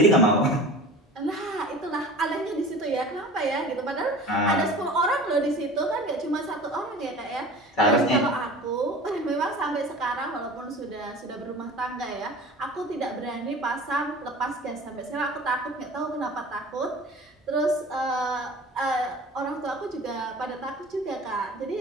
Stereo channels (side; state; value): both; normal; correlation 0.39